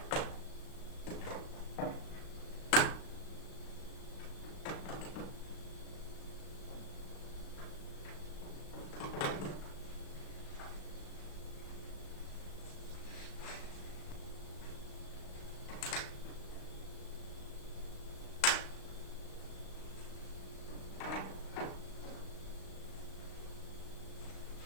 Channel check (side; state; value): right; late; 36 ms